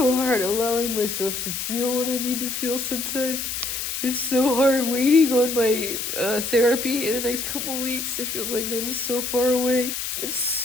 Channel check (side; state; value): left; noise; hiss, 4 dB below the sound